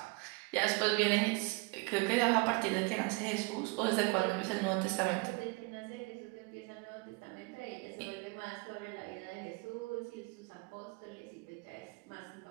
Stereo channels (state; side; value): quieter; left; 27.3 dB